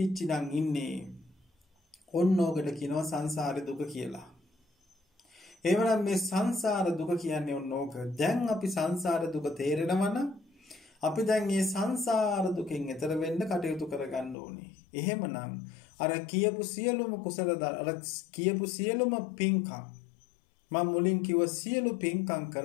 නම් ඉන්නේ. ඔන්න ඕකට කියනවා සංසාර දුක කියලා. එවනම් මේ සංසාර දුක කියන්නේ ඔන්න ඕක. දැන් අපි සංසාර දුක තේරෙනවා නම් අපි දැන් මේ සංසාර දුකෙන් එතර වෙන්න කටයුතු කරගන්න ඕනේ. එහෙමනම් අර කියපු සියලුම කුසල අර කියපු සියලුම පින්කම් මම මුලින් කිව්ව සියලු පින්කම්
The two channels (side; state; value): right; drops out; at 14.4 s